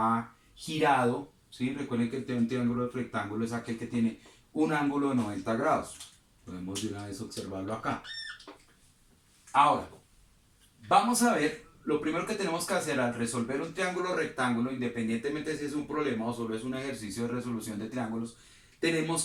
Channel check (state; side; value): identical; both; correlation 1.00